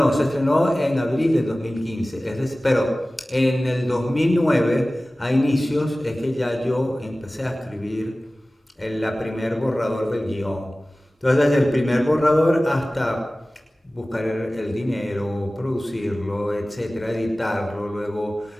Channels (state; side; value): normal; both; correlation 0.97